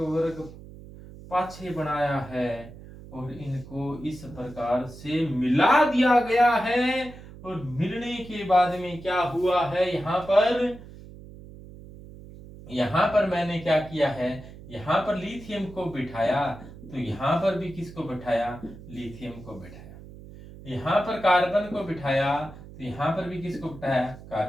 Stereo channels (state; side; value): noise; right; hum, 16 dB below the sound